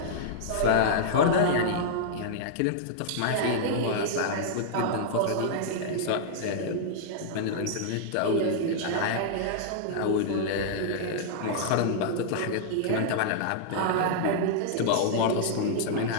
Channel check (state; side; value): different; both; correlation -0.02